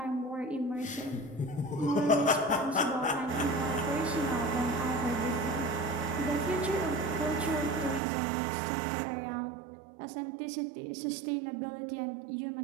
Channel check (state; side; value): drops out; left; at 8.0 s